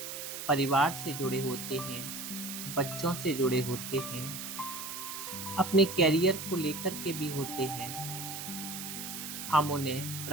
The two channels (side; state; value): right; noise; hiss, 7 dB below the sound